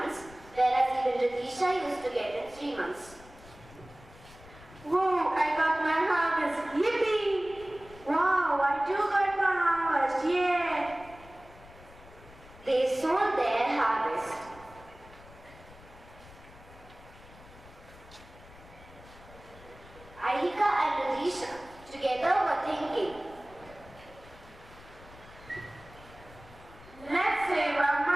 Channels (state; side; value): noise; left; rumble, 21 dB below the sound